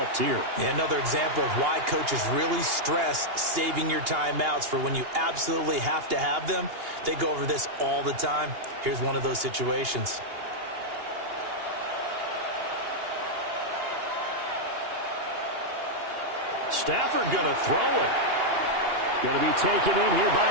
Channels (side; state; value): left; late; 2.8 ms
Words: here. Yeah, another example of why coaches really stress saving your timeouts for when you absolutely have to have them. They go over this all the time. Here's one of those situations. Stafford going to throw it. Going to be taken in here